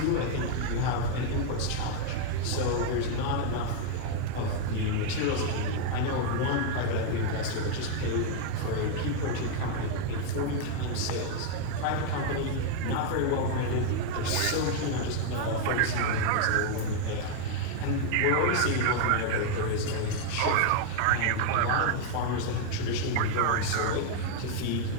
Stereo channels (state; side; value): different; both; correlation 0.00